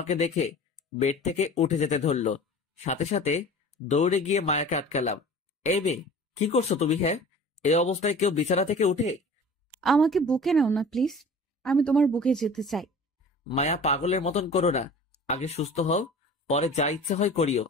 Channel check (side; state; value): both; normal; correlation 0.41